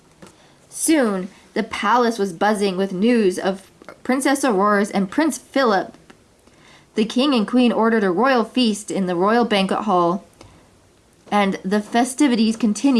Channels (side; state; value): both; identical; correlation 1.00